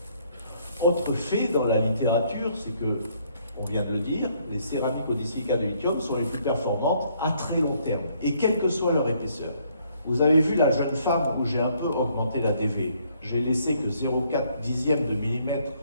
Autre fait dans la littérature, c'est que, on vient de le dire, les céramiques au disilicate de lithium sont les plus performantes à très long terme, et quelle que soit leur épaisseur. Vous avez vu la jeune femme où j'ai un peu augmenté la DV. J'ai laissé que 0,4 dixième de millimètre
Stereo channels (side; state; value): both; inverted; correlation -0.67